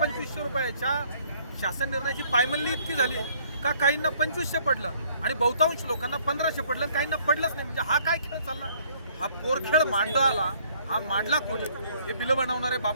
रुपयाच्या शासन निर्णयाची पायमल्ली इतकी झाली का काहींना 2500 पडलं आणि बहुतांश लोकांना 1500 पडलं, काहींना पडलंच नाही। म्हणजे हा काय खेळ चालला? हा पोरखेळ मांडला, हा मांडला कोणी? हे बिलं बनवणारे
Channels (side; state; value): both; inverted; correlation -0.62